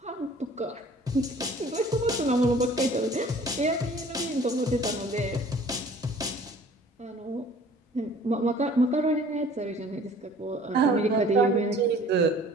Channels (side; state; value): both; normal; correlation 0.51